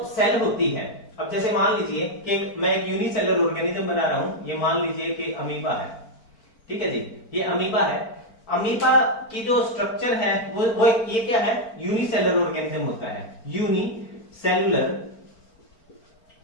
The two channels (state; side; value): late; right; 4.4 ms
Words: सेल होती है, अब जैसे मान लीजिए कि मैं एक यूनिसेलुलर ऑर्गेनिज्म बना रहा हूं, ये मान लीजिए कि अमीबा है, ठीक है जी, ये अमीबा है। अमीबा की जो स्ट्रक्चर है वो ये क्या है, यूनिसेलुलर ऑर्गेनिज्म होता है, यूनिसेलुलर